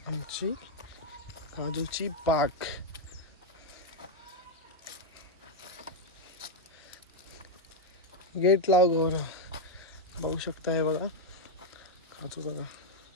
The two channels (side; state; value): both; normal; correlation 0.01